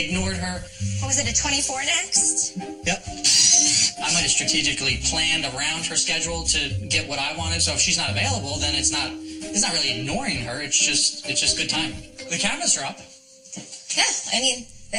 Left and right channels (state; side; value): identical; both; correlation 1.00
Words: her. What was it, a 24 next? Yep. I might have strategically planned around her schedule to get what I wanted. So if she's not available, then it's not really ignoring her. It's just good timing. The cabinets are up. Yeah, I mean,